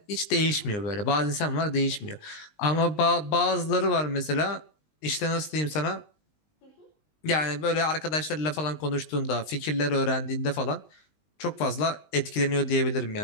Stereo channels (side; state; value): right; late; 19 ms